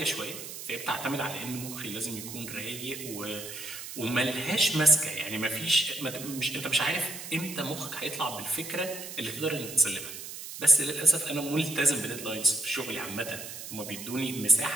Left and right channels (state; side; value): noise; right; hiss, 10 dB below the sound